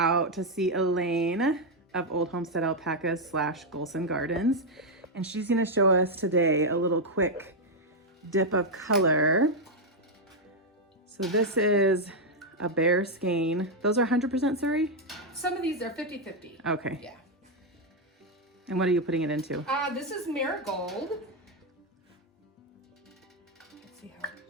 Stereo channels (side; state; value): both; normal; correlation 0.01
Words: to see Elaine of Old Homestead Alpacas / Golson Gardens. And she's gonna show us today a little quick dip of color. So this is a bear skein. Those are 100% Surrey? Some of these are 50-50. Okay. Yeah. And what are you putting it into? This is Marigold. Let's see how